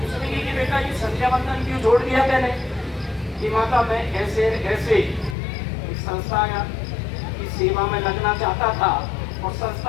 उसने कहा कि बेटा ये संध्या बंधन क्यों छोड़ दिया मैंने? कि माता मैं ऐसे ऐसे एक संस्था की सेवा में लगना चाहता था और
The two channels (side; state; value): right; drops out; at 5.4 s